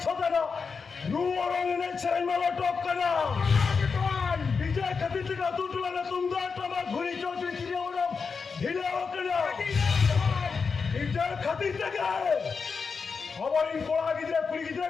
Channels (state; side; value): quieter; right; 5.2 dB